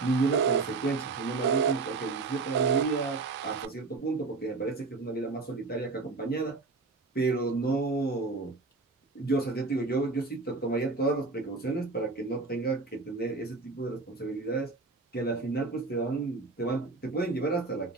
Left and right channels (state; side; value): quieter; left; 3.9 dB